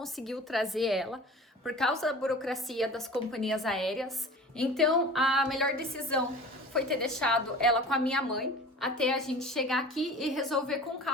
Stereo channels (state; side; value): normal; both; correlation 0.40